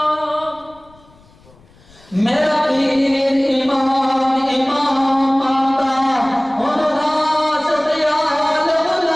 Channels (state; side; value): noise; left; rumble, 28 dB below the sound